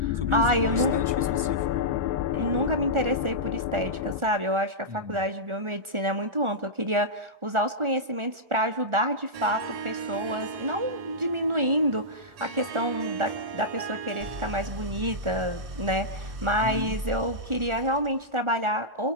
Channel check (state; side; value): late; left; 1.4 ms